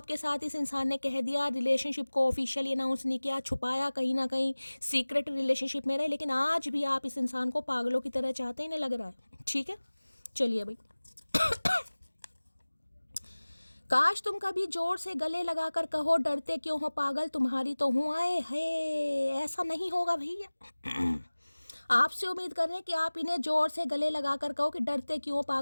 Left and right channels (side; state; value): both; inverted; correlation -1.00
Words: साथ इस इंसान ने कह दिया, रिलेशनशिप को ऑफिशियली अनाउंस नहीं किया, छुपाया, कहीं ना कहीं सीक्रेट रिलेशनशिप में रहे, लेकिन आज भी आप इस इंसान को पागलों की तरह चाहते ही नहीं लग रहा है। ठीक है, चलिए भाई। काश तुम कभी जोर से गले लगाकर कहो, डरते क्यों हो पागल, तुम्हारी तो हूँ। आए है, ऐसा नहीं होगा भैया। आपसे उम्मीद कर रहे हैं कि आप इन्हें जोर से गले लगाकर कहो कि डरते क्यों हो